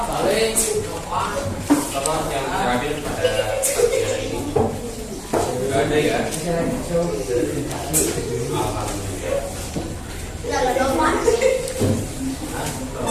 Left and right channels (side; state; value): both; identical; correlation 1.00